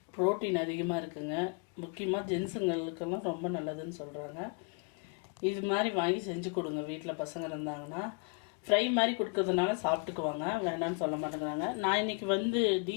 ப்ரோட்டீன் அதிகமாக இருக்குங்க. முக்கியமாக ஜென்ஸுங்களுக்கெல்லாம் ரொம்ப நல்லதுன்னு சொல்கிறாங்க. இது மாதிரி வாங்கி செஞ்சு கொடுங்க. வீட்டில் பசங்க இருந்தாங்கன்னா ஃப்ரை மாதிரி கொடுக்கறதுனால சாப்பிட்டுக்குவாங்க, வேண்டாம்னு சொல்ல மாட்டேங்கிறாங்க. நான் இன்றைக்கி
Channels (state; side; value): quieter; right; 35.3 dB